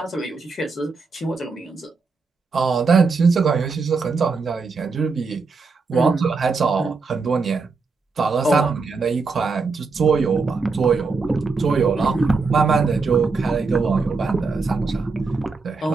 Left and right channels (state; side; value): quieter; left; 4.4 dB